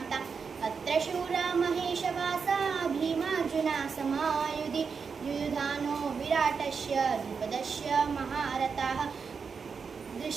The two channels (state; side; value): quieter; left; 5.6 dB